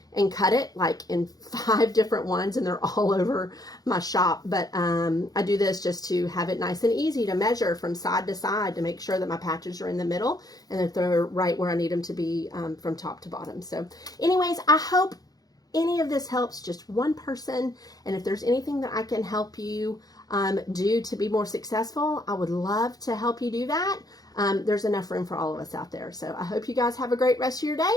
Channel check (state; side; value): late; right; 0.18 ms